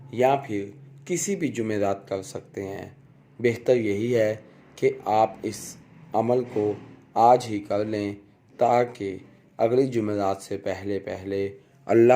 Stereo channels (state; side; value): identical; both; correlation 1.00